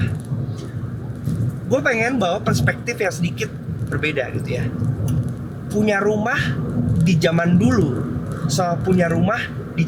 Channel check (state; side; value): identical; both; correlation 1.00